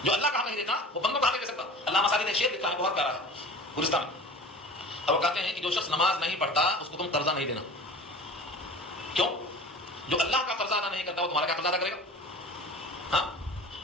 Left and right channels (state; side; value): normal; both; correlation 0.38